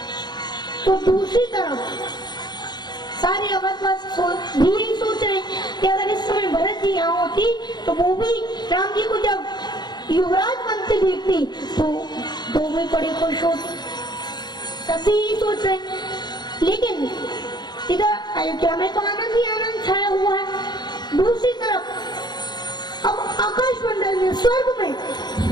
तो दूसरी तरफ सारे अवधवासी भी यही सोच रहे कि अगर इस समय भरत जी यहाँ होती तो वो भी राम जी को जब युवराज बनते देखती तो वो भी बड़े खुश होते। सभी यही सोच रहे, लेकिन इधर अयोध्या में तो आनंद ही आनंद छाया हुआ है। दूसरी तरफ अब आकाश मंडल में, स्वर्ग में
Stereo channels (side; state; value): right; late; 0.21 ms